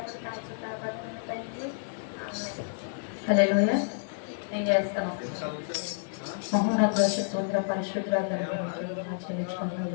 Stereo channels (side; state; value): right; silent; 58 dB below the other